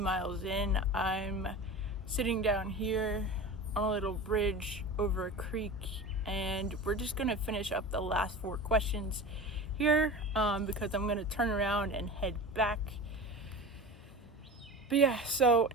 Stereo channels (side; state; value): both; normal; correlation 0.31